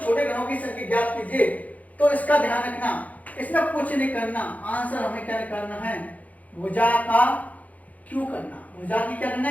छोटे घनों की संख्या ज्ञात कीजिए, तो इसका ध्यान रखना, इसमें कुछ नहीं करना, आंसर हमें क्या करना है? भुजा का क्यों करना, भुजा की क्या करना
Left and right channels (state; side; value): late; right; 0.074 ms